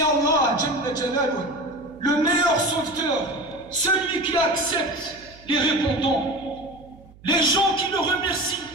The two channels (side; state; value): right; noise; hum, 24 dB below the sound